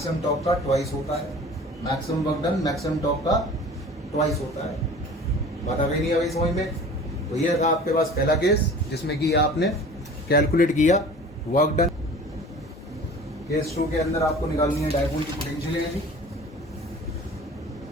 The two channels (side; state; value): both; normal; correlation 0.43